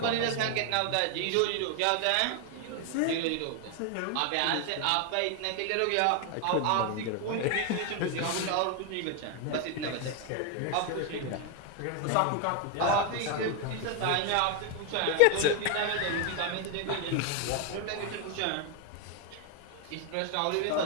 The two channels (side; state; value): both; different; correlation 0.01